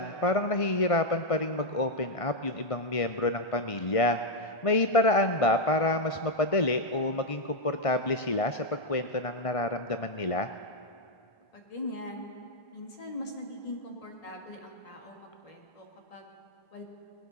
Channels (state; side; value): late; right; 1.5 ms